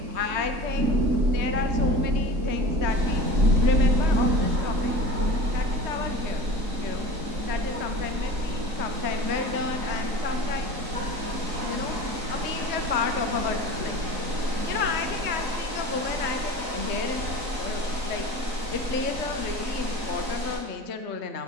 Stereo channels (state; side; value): late; left; 3.9 ms